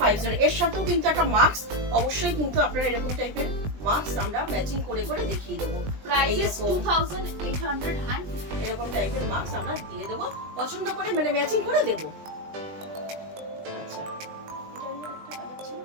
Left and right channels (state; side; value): late; left; 20 ms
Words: এর সাথেও কিন্তু একটা মাস্ক, অবশ্যই কিন্তু আপনারা এরকম টাইপের মাস্ক আমরা ম্যাচিং করে করে দেখিয়ে দেবো। Price is এইরকম। 2800 এরকম টাইপের মাস্ক আমরা দিয়ে দেবো, পছন্দ করে মানে ম্যাচিং করে দেবো। আচ্ছা, এটা নিয়ে একটা কালার ছিল,